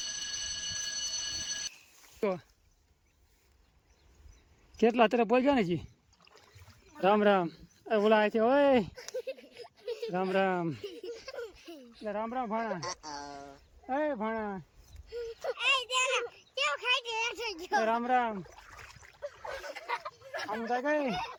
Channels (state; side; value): identical; both; correlation 1.00